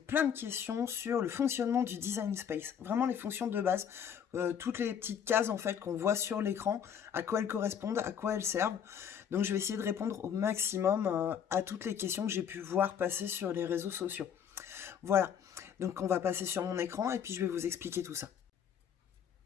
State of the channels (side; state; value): right; quieter; 8.3 dB